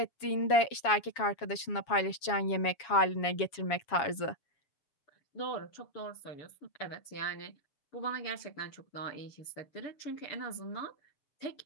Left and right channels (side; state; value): right; late; 7.2 ms